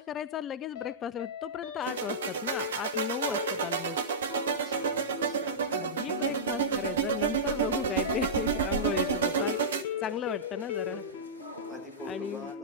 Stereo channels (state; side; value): normal; both; correlation -0.15